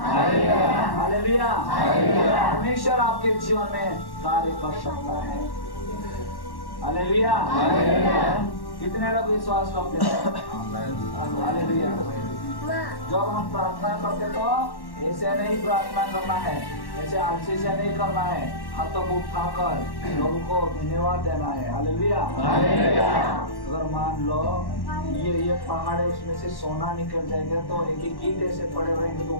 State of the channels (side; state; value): right; late; 1.1 ms